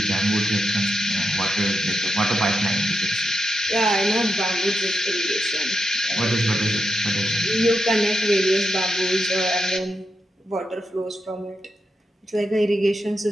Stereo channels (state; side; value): normal; both; correlation 0.85